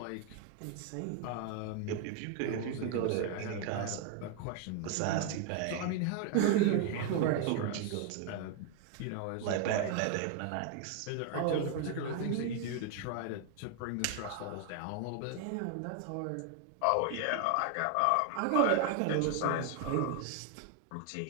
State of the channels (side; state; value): both; different; correlation 0.00